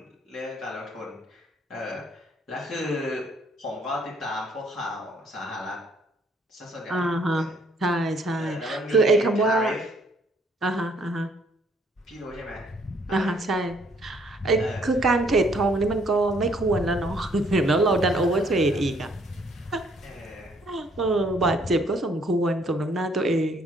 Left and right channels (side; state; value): both; normal; correlation 0.65